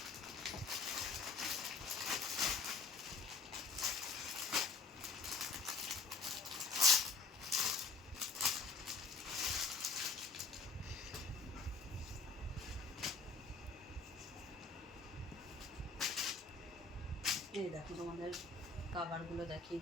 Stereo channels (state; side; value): quieter; right; 4.0 dB